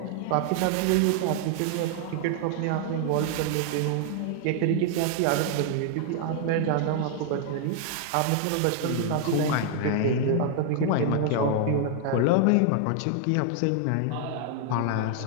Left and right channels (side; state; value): both; different; correlation 0.00